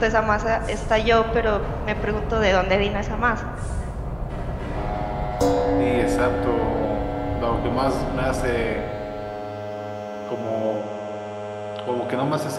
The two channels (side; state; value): both; identical; correlation 1.00